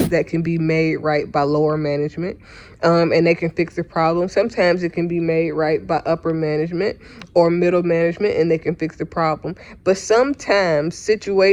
that can be made right by lower management, and they can fix the problem. Sometimes it can be made right by upper management or middle management, and they can fix the problem. But sometimes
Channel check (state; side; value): identical; both; correlation 1.00